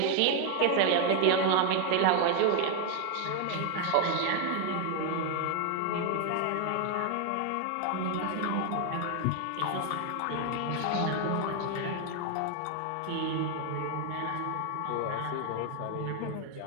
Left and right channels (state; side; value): different; both; correlation 0.00